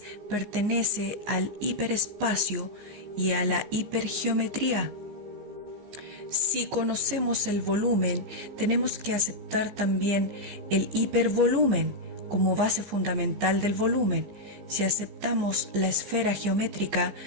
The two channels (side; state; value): left; late; 15 ms